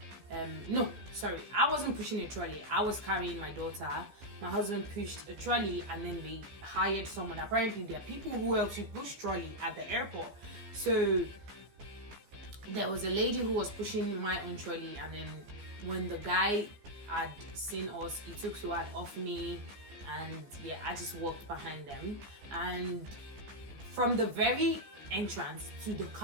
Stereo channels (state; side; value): late; left; 15 ms